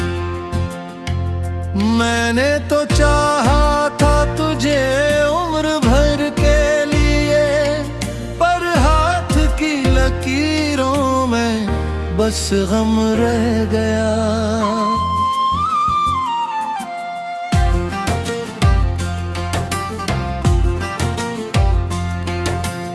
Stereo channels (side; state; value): both; identical; correlation 1.00